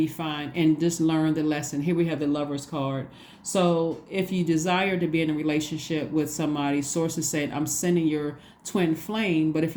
fine. And just learn the lesson. Here we have the Lover's card. So if you desire to be in a relationship with somebody, Source is saying, I'm sending your twin flame. But if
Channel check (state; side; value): identical; both; correlation 1.00